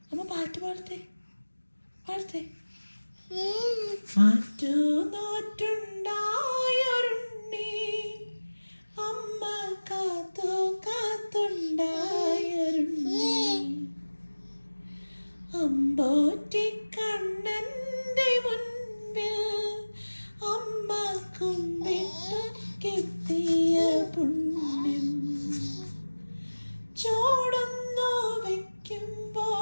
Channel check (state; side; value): inverted; both; correlation -1.00